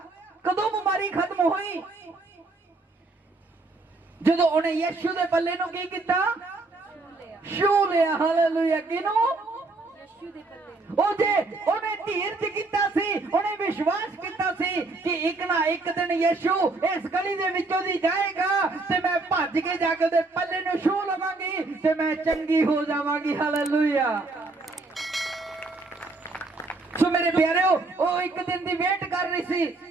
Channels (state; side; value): quieter; left; 3.4 dB